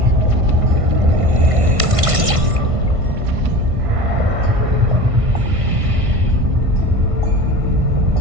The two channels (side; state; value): left; late; 1.5 ms